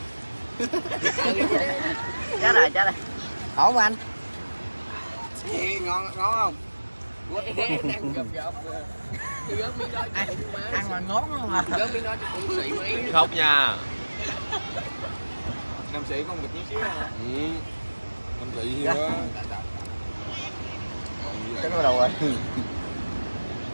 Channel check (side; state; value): both; inverted; correlation -1.00